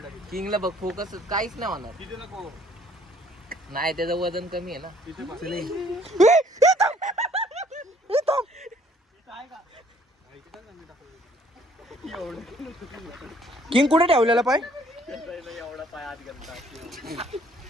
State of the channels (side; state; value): both; normal; correlation 0.60